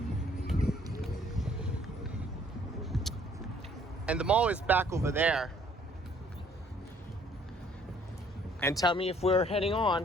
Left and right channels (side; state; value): both; normal; correlation 0.61